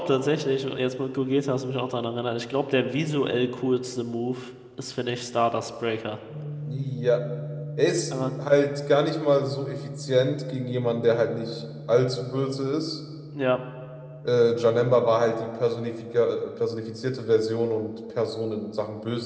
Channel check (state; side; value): identical; both; correlation 1.00